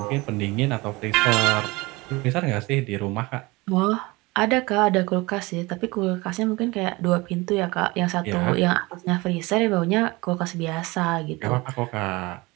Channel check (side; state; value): left; quieter; 23.2 dB